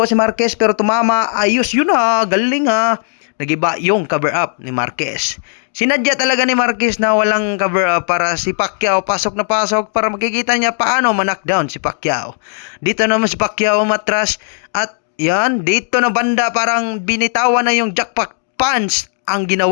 si Marquez, pero tumama. Ayos yun ha, galing ha. Nagiba yung cover up ni Marquez. Sinadya talaga ni Marquez na walang cover up para si Pacquiao pasok na pasok para makikita niya paano ma-knockdown si Pacquiao. Dito naman si Pacquiao matras at yan, dito na banda parang binitawan na yung jackpot punch ang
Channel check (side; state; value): right; silent; digital silence